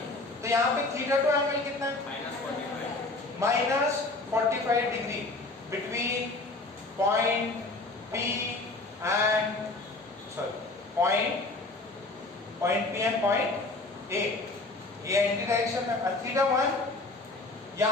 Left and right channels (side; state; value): right; quieter; 3.2 dB